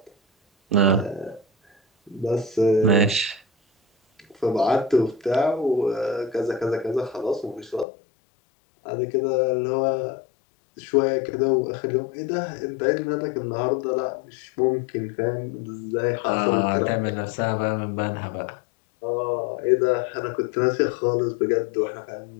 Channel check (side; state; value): right; drops out; at 7.9 s